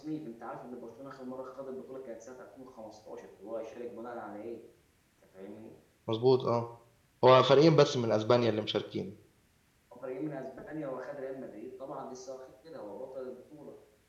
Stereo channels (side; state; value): both; identical; correlation 1.00